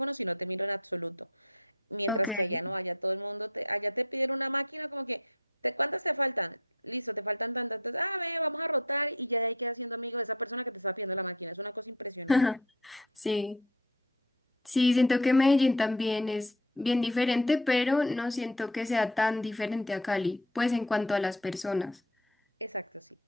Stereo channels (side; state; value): both; normal; correlation 0.36